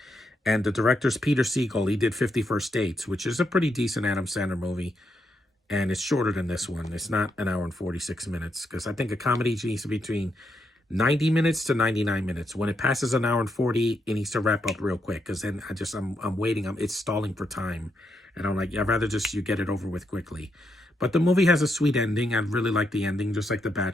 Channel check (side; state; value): both; normal; correlation 0.80